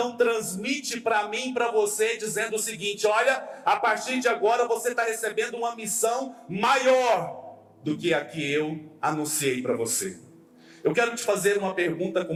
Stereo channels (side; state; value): both; identical; correlation 1.00